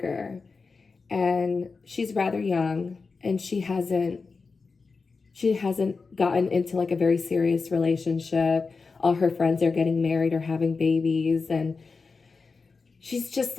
and she's rather young, and she hasn't gotten into like a very serious relationship. All her friends are getting married or having babies, and she's just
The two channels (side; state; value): right; quieter; 4.5 dB